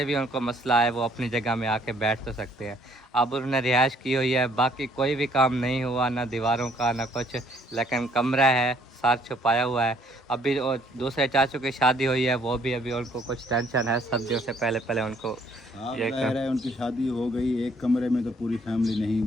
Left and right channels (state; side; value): normal; both; correlation 0.63